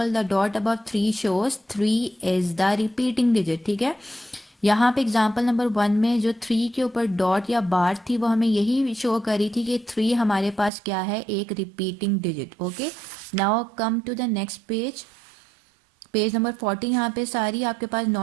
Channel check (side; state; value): left; drops out; at 10.7 s